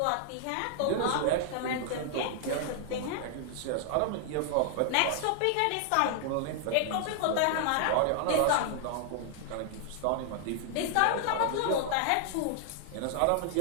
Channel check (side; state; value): both; different; correlation 0.00